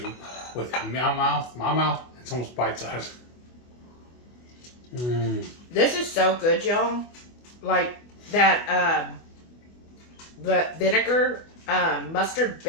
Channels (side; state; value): right; late; 24 ms